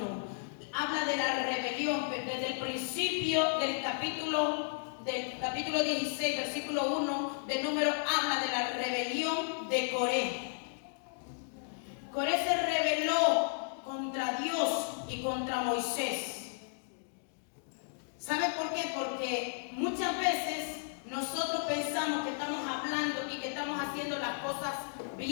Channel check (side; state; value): right; silent; digital silence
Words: Habla de la rebelión, desde el principio del capítulo 16, versículo 1 del número, habla de la rebelión de Coré. Coré se rebeló contra Dios y contra Moisés. ¿Sabe por qué? Porque muchas veces nosotros pensamos que estamos hablando y que estamos haciendo las cosas